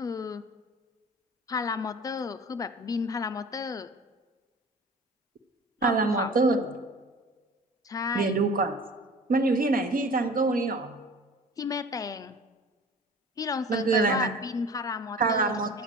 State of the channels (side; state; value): both; normal; correlation 0.42